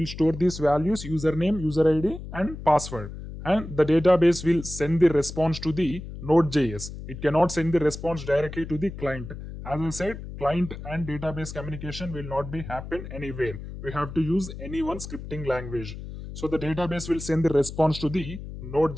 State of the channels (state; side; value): noise; left; hum, 10 dB below the sound